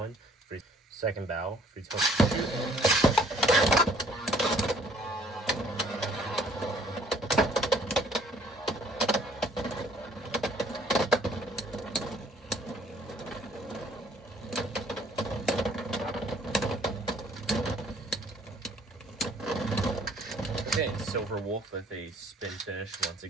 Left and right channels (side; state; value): both; normal; correlation 0.59